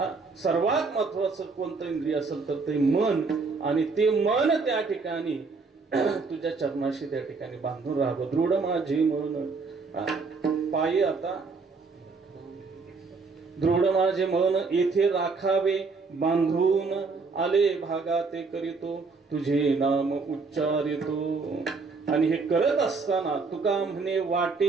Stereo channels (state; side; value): quieter; left; 4.4 dB